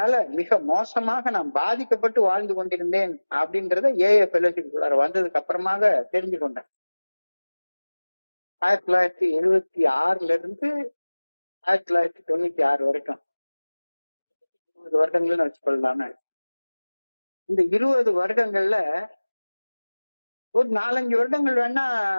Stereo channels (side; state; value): both; inverted; correlation -1.00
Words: மிக மோசமாக நான் பாதிக்கப்பட்டு வாழ்ந்து கொண்டிருந்தேன் அப்படின்றத ஏஏ ஃபெலோஷிப் வந்ததுக்கு அப்புறமாக தெரிஞ்சு கொண்டேன். 1976 இருந்து 1996 வரைக்கும் 20 வருடங்கள்னு வச்சுக்கொள்ளலாமே. இந்த 20 வருடங்கள்ல ஒரு 4-5 வருடங்கள் வேணா